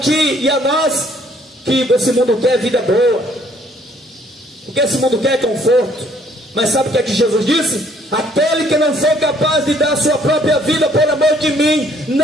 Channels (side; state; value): both; normal; correlation 0.63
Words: e a nós, que esse mundo quer vida boa, porque esse mundo quer conforto. Mas sabe o que é que Jesus disse? Aquele que não for capaz de dar a sua própria vida por amor de mim,